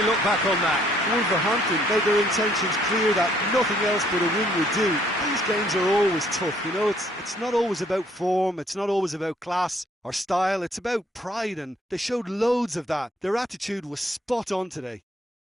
look back on that? Wolverhampton made their intentions clear that nothing else but a win would do. These games are always tough, you know, it's not always about form, it's not always about class or style, it's about pride, and they showed loads of that. Their attitude was spot on today.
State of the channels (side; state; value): both; normal; correlation 0.64